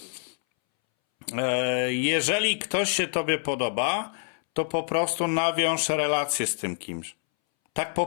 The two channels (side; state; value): right; silent; 61 dB below the other